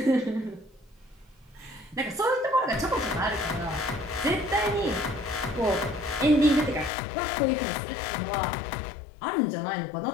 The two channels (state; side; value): drops out; right; at 6.9 s